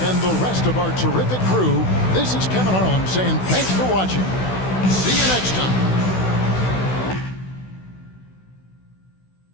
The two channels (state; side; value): late; right; 16 ms